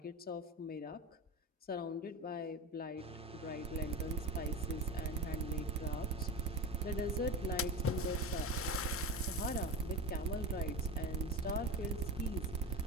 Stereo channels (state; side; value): normal; both; correlation 0.28